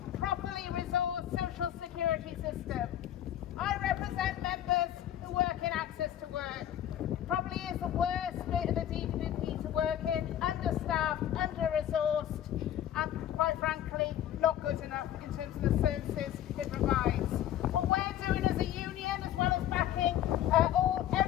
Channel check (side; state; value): right; quieter; 11.4 dB